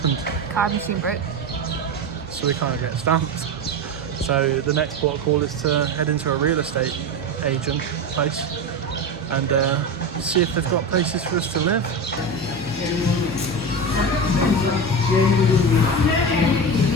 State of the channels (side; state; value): both; normal; correlation 0.22